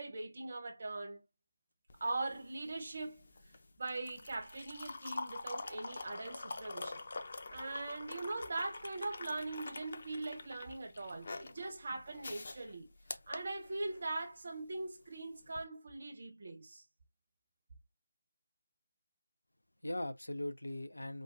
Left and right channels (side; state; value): both; inverted; correlation -0.93